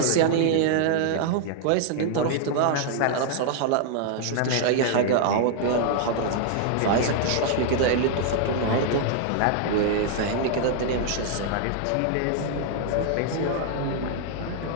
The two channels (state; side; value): different; both; correlation 0.00